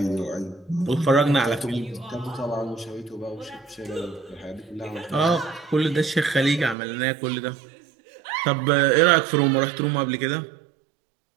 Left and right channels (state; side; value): drops out; left; at 6.8 s